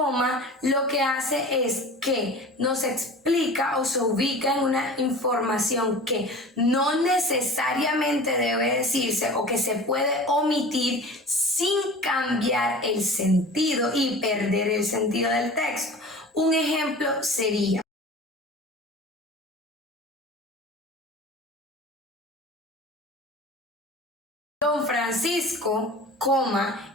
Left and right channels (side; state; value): both; normal; correlation 0.38